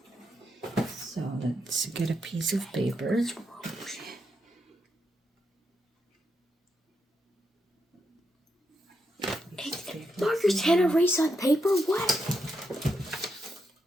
So let's get a piece of paper. Markers can't erase on paper? What?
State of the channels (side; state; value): both; normal; correlation 0.82